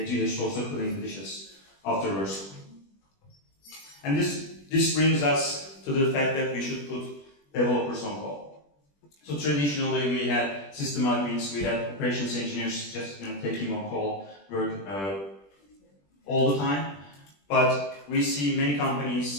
should also clean the dishes afterwards. And this brings us to the fact that we should put developers on call. So traditionally we had system admins, we had operations engineers just taking on call work all the time. But we see many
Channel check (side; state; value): right; late; 20 ms